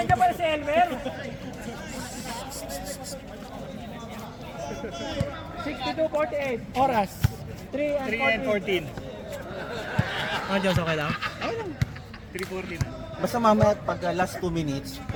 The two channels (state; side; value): identical; both; correlation 1.00